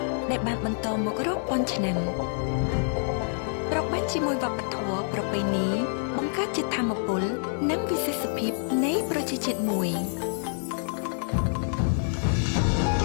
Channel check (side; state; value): right; silent; 60 dB below the other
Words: ដែលបានបន្តមករាប់ពាន់ឆ្នាំប្របាញ់ជាមួយវប្បធម៌ប្រពៃណីបង្កើតជាធម៌ពលនិងវិសេសភាពនៃប្រជាជាតិមួយ